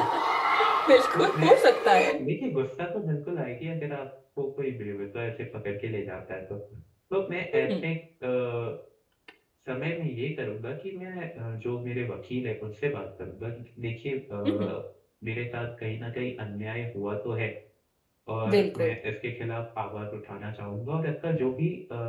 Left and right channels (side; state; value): both; identical; correlation 1.00